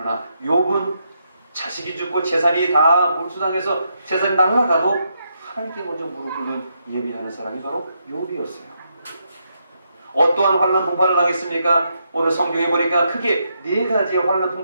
욥은 자식이 죽고 재산이 다 몰수당해서 재산이 날아가도 하나님께 먼저 무릎 꿇는 예배하는 사람이 바로 욥이었어요. 어떠한 환난 풍파를 당했습니까? 오늘 성경에 보니까 크게 4가지의 환난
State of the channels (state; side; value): inverted; both; correlation -0.80